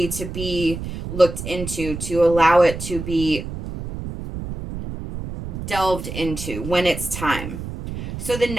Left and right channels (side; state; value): right; noise; rumble, 8 dB below the sound